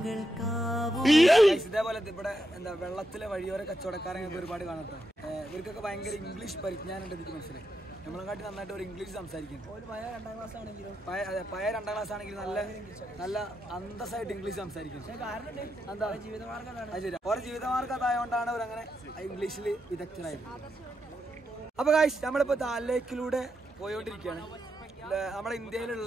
ഇതേപോലെ ഇവിടെ എന്താ വെള്ളത്തിലെ വഴിയോര കച്ചവടക്കാരെ ഒരുപാട് കാണട്ടെ. ഇവർക്കൊക്കെ ഭയങ്കര ഇംഗ്ലീഷ് പരിജ്ഞാനം ഉണ്ട്. എനിക്ക് മനസ്സിലായി. നമ്മളെക്കാട്ടി നന്നായിട്ട് ഒരു ഇംഗ്ലീഷ് സംസാരിക്കും. പഴയ 2ാം ക്ലാസ് ആണെങ്കിലും നല്ല അന്തസ്സായിട്ട് ഇംഗ്ലീഷ് സംസാരിക്കും. എന്താ ജീവിതമാർഗ്ഗം ഓരോ ജീവിതമാർഗ്ഗം അതായതുകൊണ്ടാണ് അവരങ്ങനെ ഇംഗ്ലീഷിൽ വിദഗ്ധരായത്. അപ്പൊ ഗൈസ് നമ്മളിപ്പോ ദാൽ ലേക്കിലൂടെ പോയോണ്ടിരിക്കുകയാണ്. നമ്മുടെ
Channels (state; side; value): normal; both; correlation 0.84